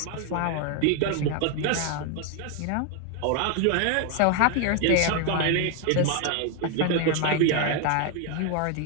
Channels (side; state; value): both; different; correlation 0.01